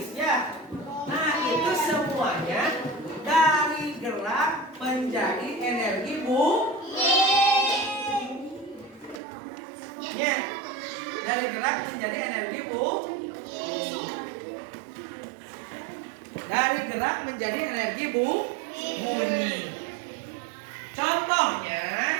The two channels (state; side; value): drops out; left; at 9.2 s